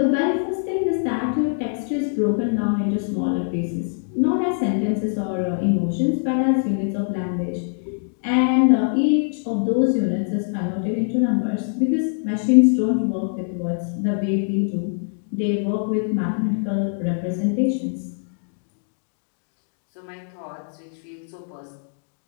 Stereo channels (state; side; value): silent; right; digital silence